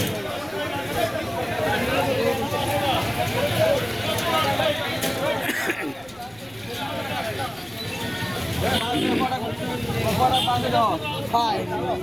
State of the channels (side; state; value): left; noise; rumble, 25 dB below the sound